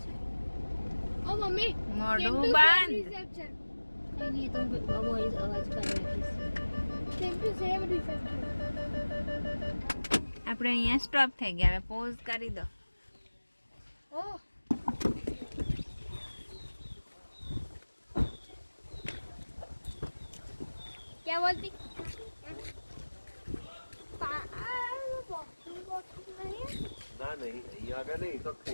ઓ મમ્મી મોઢું બંધ રિસેપ્શન नहीं तो वॉइस आवाज कर रही સેમ ટુ સેમ રિસેપ્શન આપણે અહીંયા સ્ટોપ થઈ ગયા હવે પોઝ કરી દો ઓ क्या बोलती ના નહીં અહીંયા આગળ નહીં તો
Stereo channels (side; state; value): both; inverted; correlation -1.00